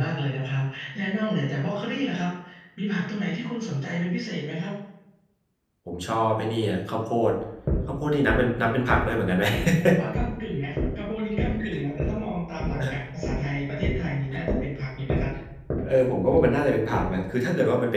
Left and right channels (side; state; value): both; identical; correlation 1.00